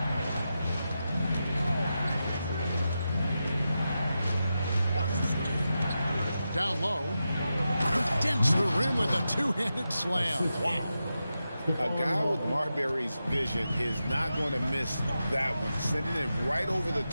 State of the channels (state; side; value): inverted; both; correlation -0.90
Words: Down low. Dents the rim with a two-handed slam. Wow. A guy with Marbury's vision is not going to miss that one. Sending it right over the